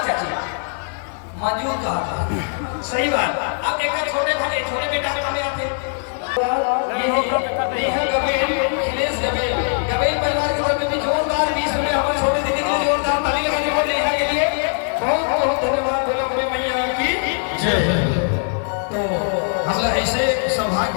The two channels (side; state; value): right; silent; 61 dB below the other